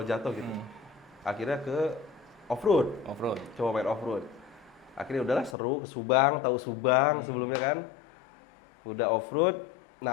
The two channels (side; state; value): right; drops out; at 5.6 s